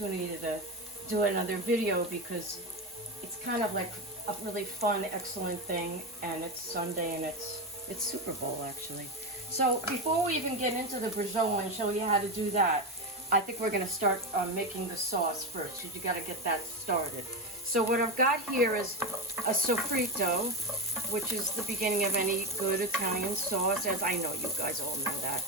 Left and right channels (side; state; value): both; normal; correlation 0.15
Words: to do another video because it's kind of like a really fun, excellent thing, and it's Sunday and it's Super Bowl actually. So before we even get into the braciole and show you how to do that, I think we're going to start making the sauce first, because you got to get that started. So what I've got here is a sofrito, which is the beginning of any good Italian sauce, as I know you guys all know that.